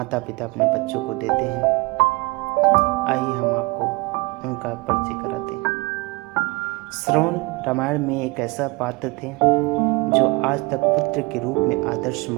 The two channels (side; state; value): left; quieter; 25.1 dB